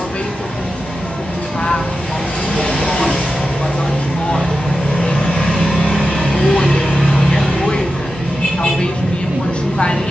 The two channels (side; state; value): both; normal; correlation 0.91